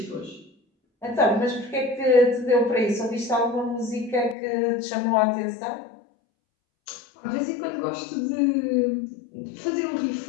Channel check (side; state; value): right; drops out; at 4.4 s